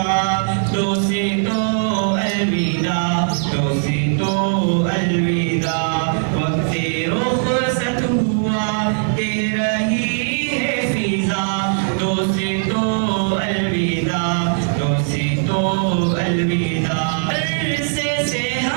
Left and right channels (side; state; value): left; silent; digital silence